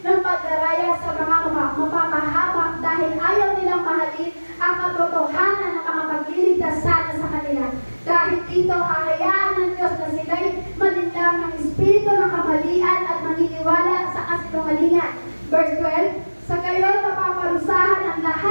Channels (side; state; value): both; inverted; correlation -1.00